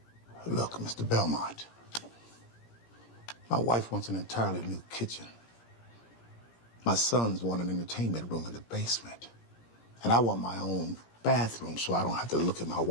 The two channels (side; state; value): right; late; 17 ms